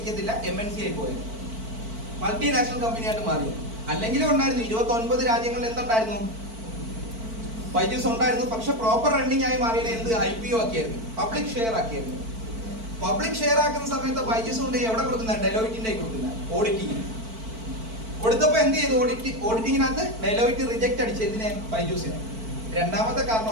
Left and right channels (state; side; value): late; left; 4.5 ms